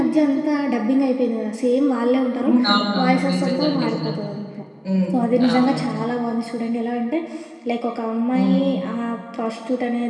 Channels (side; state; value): both; identical; correlation 1.00